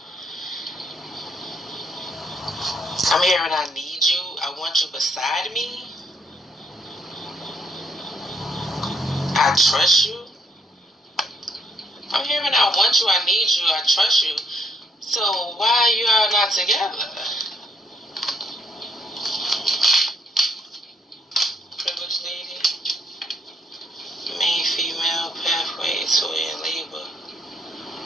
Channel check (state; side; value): normal; both; correlation 0.70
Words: I'm hearing I need you. I want you beside me. I trust you. I'm hearing I want you, I need you, I trust you. So why are you all not together? Privileged lady. Main female pathway to in labor.